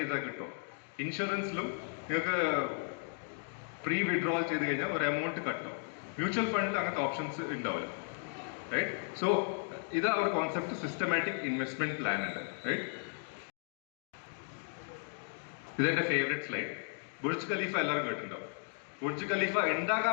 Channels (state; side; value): silent; right; 54 dB below the other